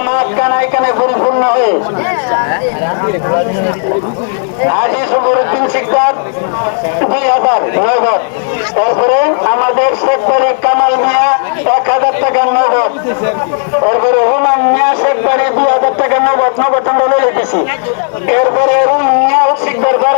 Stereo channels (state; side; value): silent; right; digital silence